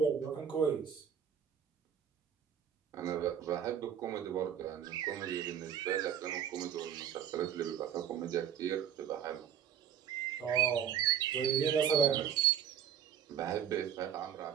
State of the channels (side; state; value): left; quieter; 8.9 dB